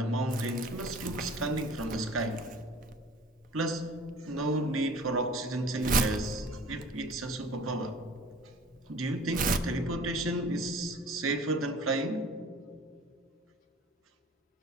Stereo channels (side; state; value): both; normal; correlation 0.47